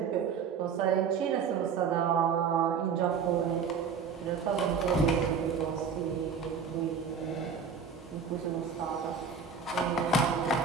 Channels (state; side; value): quieter; left; 6.1 dB